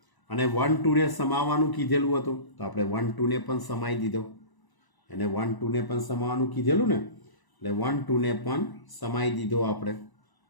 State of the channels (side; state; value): right; late; 1.0 ms